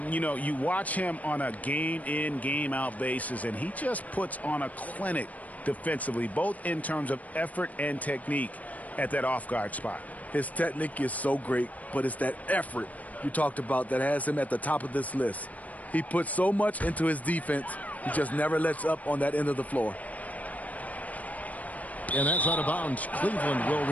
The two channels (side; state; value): right; late; 0.072 ms